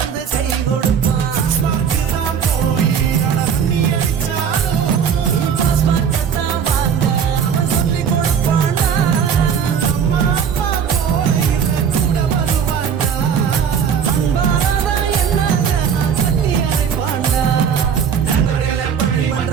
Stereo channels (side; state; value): left; quieter; 7.4 dB